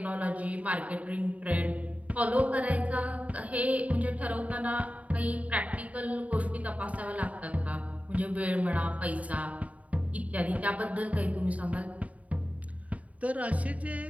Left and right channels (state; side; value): late; left; 0.069 ms